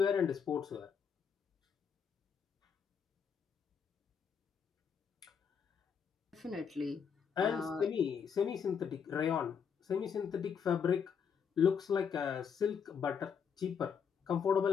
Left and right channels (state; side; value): quieter; right; 6.9 dB